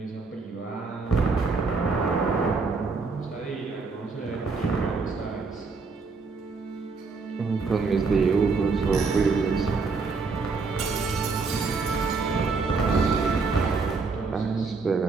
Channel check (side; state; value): left; quieter; 4.4 dB